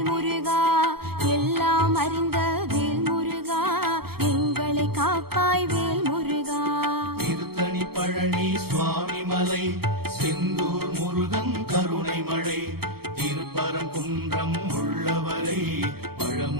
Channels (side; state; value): left; late; 0.95 ms